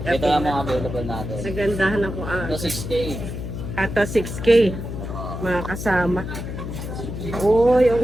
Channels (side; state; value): left; noise; hum, 6 dB below the sound